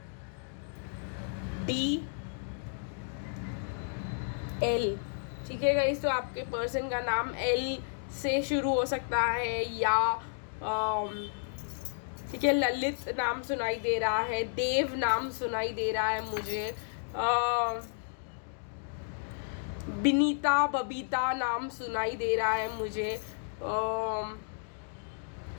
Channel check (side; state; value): right; silent; digital silence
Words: D L, ठीक है गाइस। तो आपके पर्सन का नाम L से शुरू हो सकता है, या ठीक है, ललित नाम सुनाई दे रहा है, देव नाम सुनाई दे रहा है मुझे, बिनीता बबीता नाम सुनाई दे रहा है मुझे,